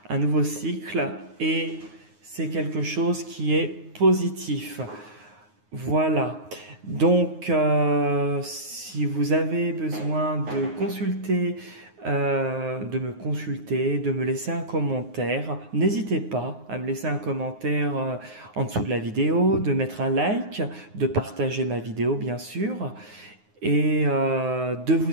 un nouveau cycle, et c'est quelque chose qui est positif. Voilà. Donc, si vous avez besoin de consulter, de me laisser un commentaire, n'hésitez pas à me laisser un commentaire en dessous de la vidéo, de mettre un like, de partager ma vidéo bien sûr, et de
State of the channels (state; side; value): late; left; 9.5 ms